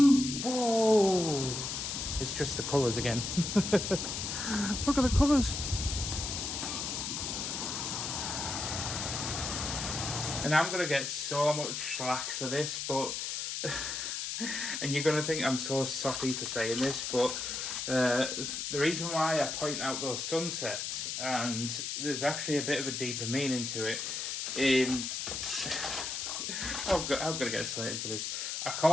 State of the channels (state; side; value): noise; left; hiss, 3 dB below the sound